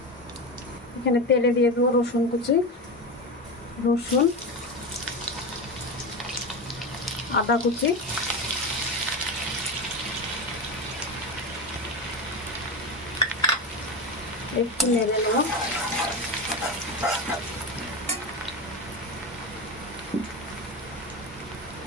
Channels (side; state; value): both; normal; correlation 0.20